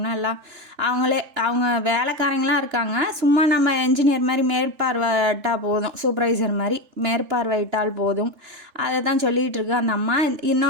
எல்லாம் அவங்க வேலைக்காரங்களாம் இருக்காங்க. சும்மா நம்ம என்ஜினியர் மாதிரி மேற்பார்வையிட்டால் போதும், சூப்பர்வைசர் மாதிரி மேற்பார்வையிட்டால் போதும். அதை தான் சொல்லிகிட்டு இருக்கு அந்த அம்மா.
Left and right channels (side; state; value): left; late; 3.4 ms